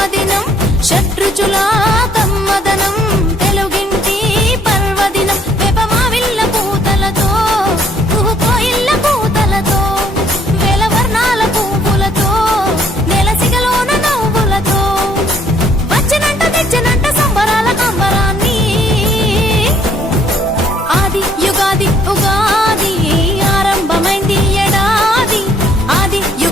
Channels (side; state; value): both; normal; correlation 0.63